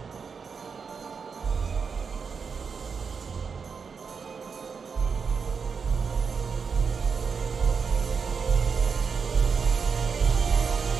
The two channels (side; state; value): left; quieter; 5.7 dB